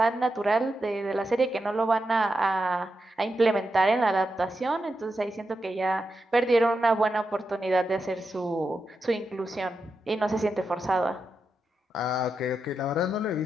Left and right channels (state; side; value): normal; both; correlation 0.87